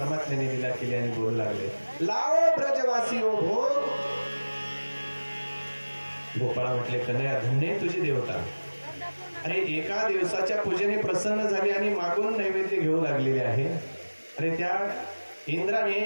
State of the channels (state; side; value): inverted; both; correlation -1.00